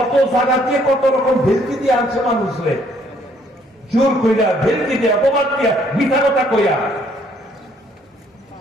জায়গাতে কত রকম ভেলকি দিয়ে আনছে মানুষরে, জোর কইরা ভেলকি দিয়ে অপবাদ দিয়া মিথ্যা কথা কইয়া।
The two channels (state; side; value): normal; both; correlation 0.65